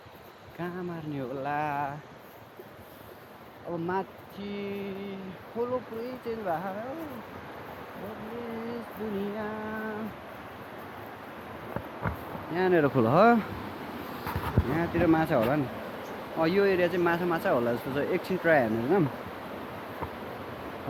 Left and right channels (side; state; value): both; identical; correlation 1.00